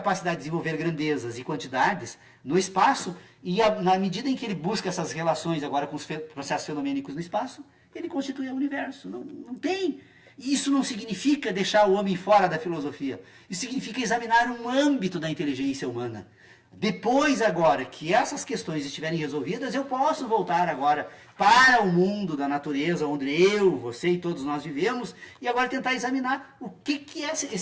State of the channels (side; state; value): both; identical; correlation 1.00